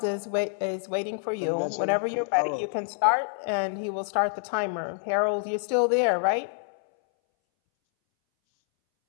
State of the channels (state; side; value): silent; right; 60 dB below the other